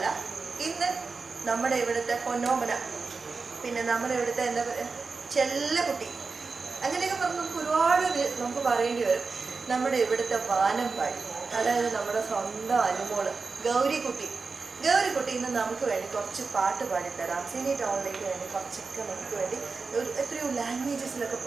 ഇന്ന് നമ്മുടെ ഇവിടുത്തെ പൊന്നോമന, പിന്നെ നമ്മുടെ ഇവിടുത്തെ എന്താ പറയുക, ചെല്ലക്കുട്ടി, അങ്ങനെയൊക്കെ പറഞ്ഞ് നമുക്ക് ഒരുപാട് നമുക്ക് പറയേണ്ടി വരും. നമ്മുടെ ഇവിടുത്തെ വാനമ്പാടി, അതായത് നമ്മുടെ സ്വന്തം അനുമോള് ഗൗരിക്കുട്ടി ഇന്ന് നമുക്ക് വേണ്ടി കുറച്ച് പാട്ട് പാടിത്തരാം. സിനി ടൗണിലേക്ക് വേണ്ടി കുറച്ചൊക്കെ നമുക്ക് വേണ്ടി എത്രയോ ലാംഗ്വേജസിലൊക്കെ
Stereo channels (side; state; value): left; quieter; 4.4 dB